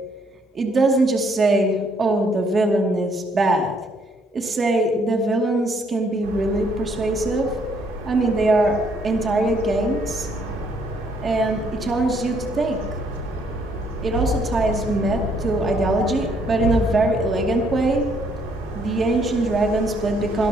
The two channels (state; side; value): normal; both; correlation 0.68